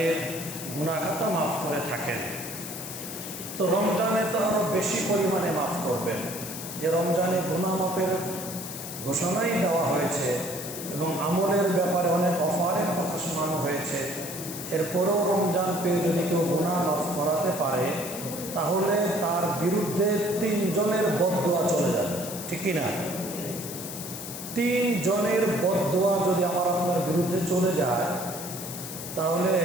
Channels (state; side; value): noise; left; hiss, 9 dB below the sound